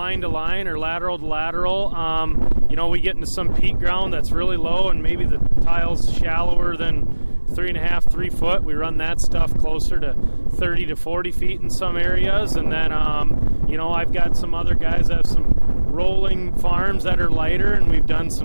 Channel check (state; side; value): inverted; both; correlation -1.00